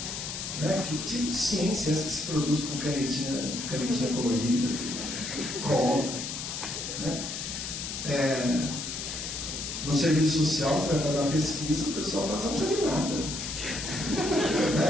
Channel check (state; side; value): noise; left; hiss, 5 dB below the sound